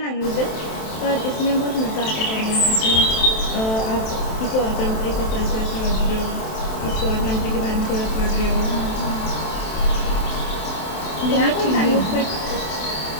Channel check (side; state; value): right; late; 27 ms